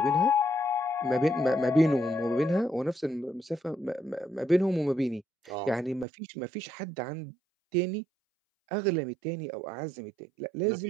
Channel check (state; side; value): drops out; left; at 6.1 s